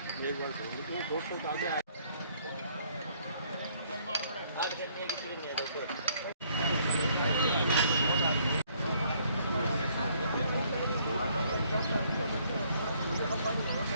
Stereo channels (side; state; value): both; inverted; correlation -0.65